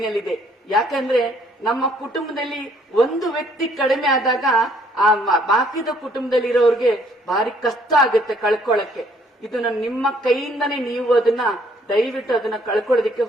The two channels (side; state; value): both; normal; correlation 0.64